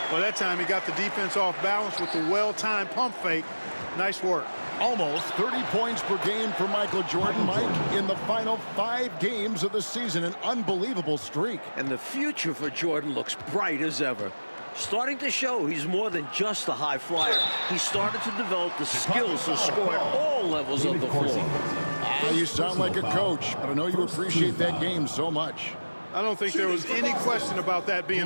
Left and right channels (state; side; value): inverted; both; correlation -1.00